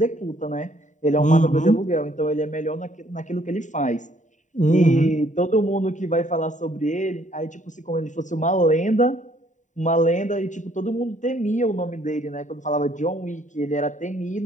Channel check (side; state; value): right; late; 0.36 ms